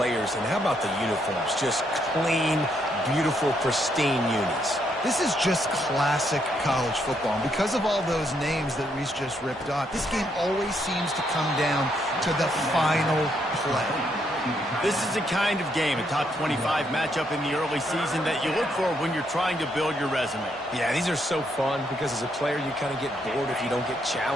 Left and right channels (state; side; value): normal; both; correlation 0.75